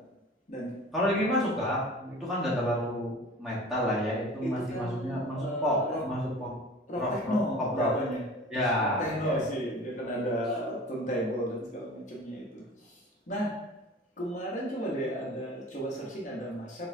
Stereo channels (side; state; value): both; normal; correlation 0.41